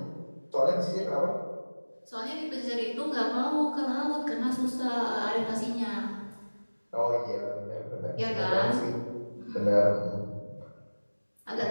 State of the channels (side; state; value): both; inverted; correlation -1.00